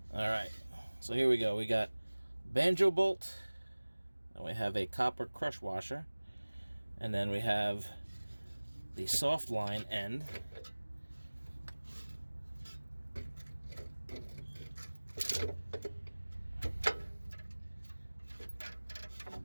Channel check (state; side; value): inverted; both; correlation -1.00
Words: All right, so here we go. We got banjo bolt, and we have a copper crush washer, and then we have the soft line end.